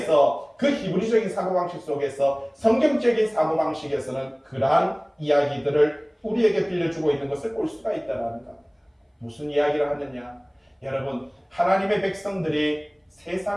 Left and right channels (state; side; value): identical; both; correlation 1.00